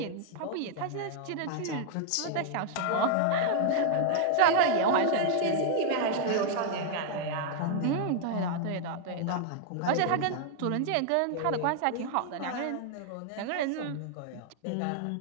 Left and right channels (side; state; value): both; different; correlation -0.01